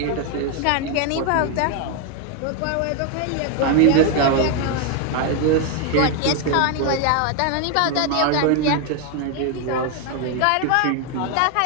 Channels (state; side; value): different; both; correlation 0.01